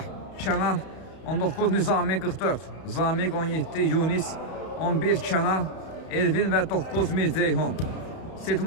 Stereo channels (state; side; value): late; right; 32 ms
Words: Kənan 19, Nizami 44, Zamiq 17, Yunis 11, Kənan, Elvin və 9, Mirzeyhun.